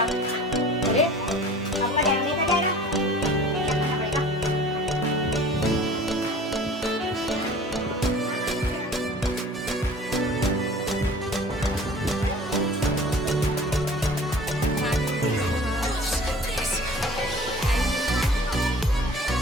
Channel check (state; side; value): normal; both; correlation 0.46